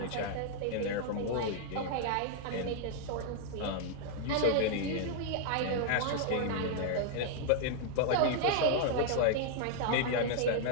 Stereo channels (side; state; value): both; different; correlation -0.01